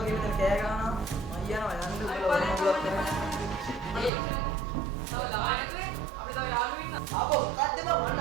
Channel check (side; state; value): left; drops out; at 4.1 s